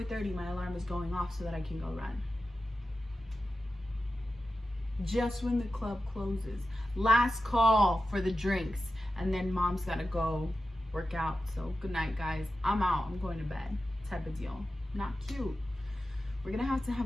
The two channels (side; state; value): both; normal; correlation 0.93